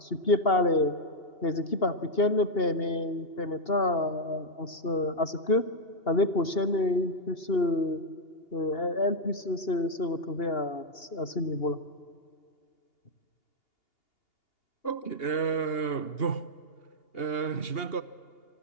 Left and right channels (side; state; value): right; late; 2.8 ms